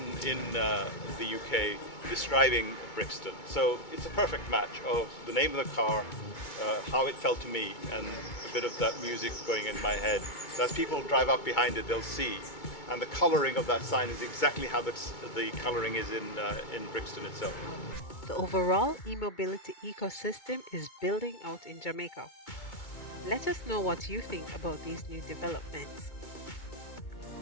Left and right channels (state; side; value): late; right; 2.2 ms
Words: in the UK describing Brixton. So it's a perfect match of the name of the car, how it felt to me, and a bit of that music going in my head. So as people drive up behind it, they'll see. And the colouring of that sign is exactly how the colouring is in Brixton itself. The overall e-mobility ecosystem is building out in Jamaica. Let us know what you think about these new developments.